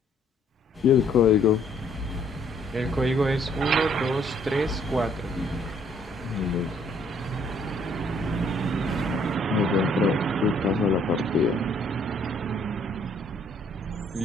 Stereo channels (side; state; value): both; normal; correlation 0.64